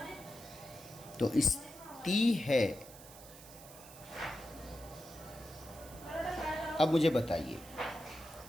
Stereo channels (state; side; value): noise; right; hiss, 18 dB below the sound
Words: तो इस ती है, अब मुझे बताइए